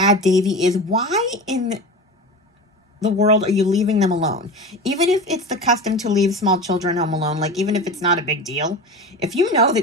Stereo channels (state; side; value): normal; both; correlation 0.30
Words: Davy is, why in the world are you leaving them alone? Even if it's the custom to leave small children home alone, like even if it's not a big deal, if you know